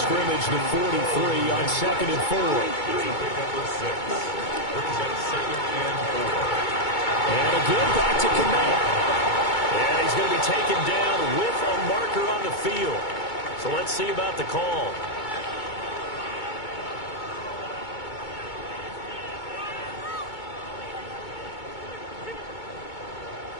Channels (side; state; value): right; late; 2.2 ms